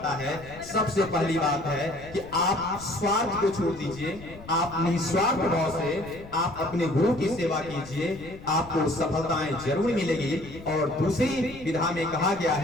है। सबसे पहली बात है कि आप स्वार्थ को छोड़ दीजिए, आप निस्वार्थ भाव से आप अपने गुरु की सेवा कीजिए, आपको सफलताएं जरूर मिलेगी। और दूसरी विधा में कहा गया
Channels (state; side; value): noise; left; rumble, 17 dB below the sound